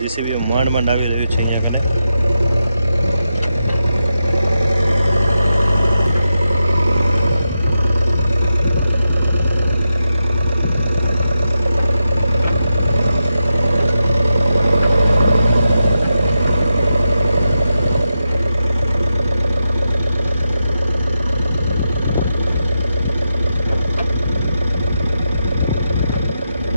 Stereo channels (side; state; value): both; inverted; correlation -0.87